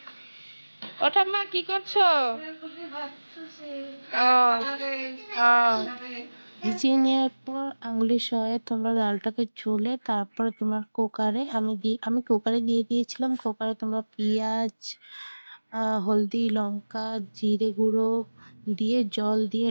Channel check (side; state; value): both; inverted; correlation -1.00